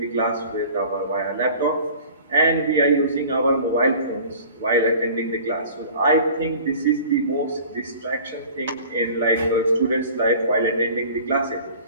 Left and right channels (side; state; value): both; inverted; correlation -0.45